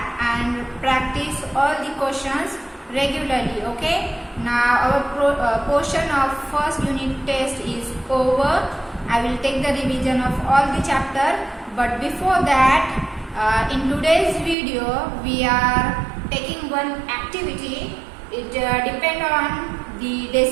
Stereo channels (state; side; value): drops out; left; at 14.6 s